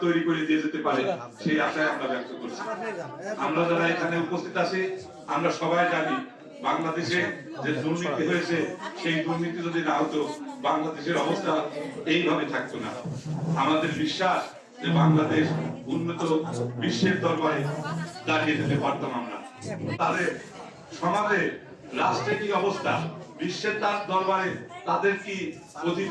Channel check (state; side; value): identical; both; correlation 1.00